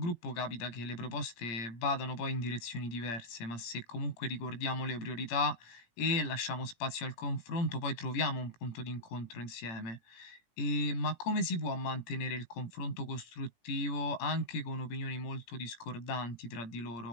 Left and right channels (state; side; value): late; right; 17 ms